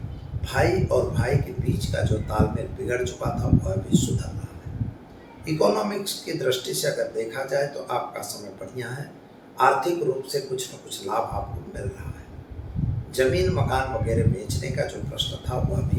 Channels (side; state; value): both; identical; correlation 1.00